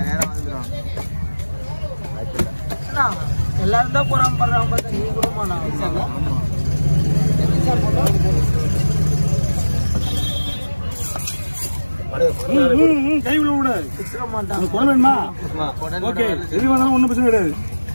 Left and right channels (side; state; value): both; inverted; correlation -1.00